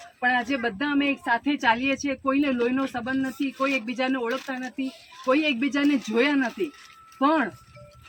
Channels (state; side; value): identical; both; correlation 1.00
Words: પણ આજે બધા અમે એક સાથે ચાલીએ છીએ. કોઈને લોહીનો સંબંધ નથી, કોઈ એકબીજાને ઓળખતા નથી, કોઈ એકબીજાને જોયા નથી, પણ